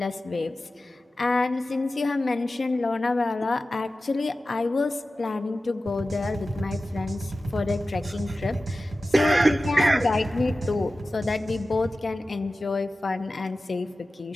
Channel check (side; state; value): both; normal; correlation 0.95